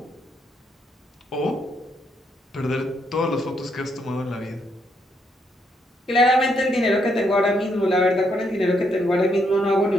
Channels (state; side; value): normal; both; correlation 0.75